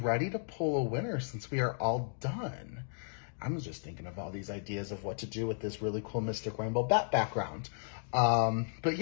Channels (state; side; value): silent; right; digital silence